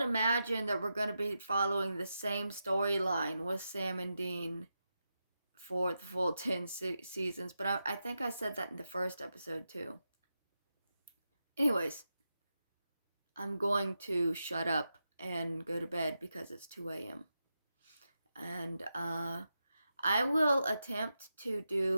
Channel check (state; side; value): inverted; both; correlation -0.88